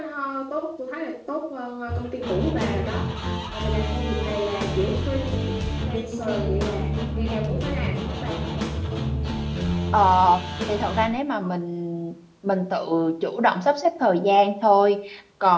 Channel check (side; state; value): both; identical; correlation 1.00